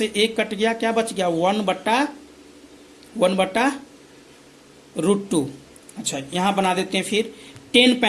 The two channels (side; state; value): both; identical; correlation 1.00